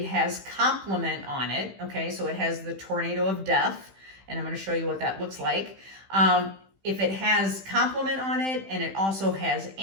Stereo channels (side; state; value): left; late; 15 ms